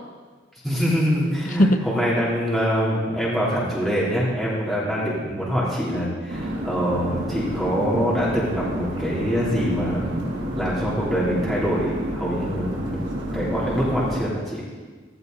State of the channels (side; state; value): both; normal; correlation 0.71